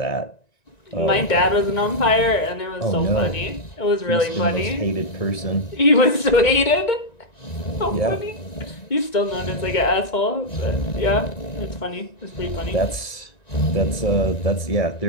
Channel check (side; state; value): right; late; 1.9 ms